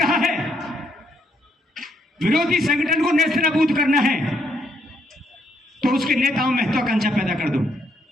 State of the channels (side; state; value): both; normal; correlation 0.73